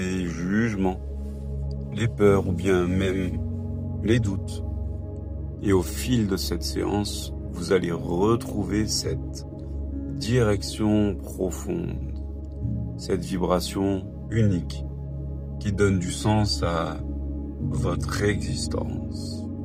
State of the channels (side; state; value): both; identical; correlation 1.00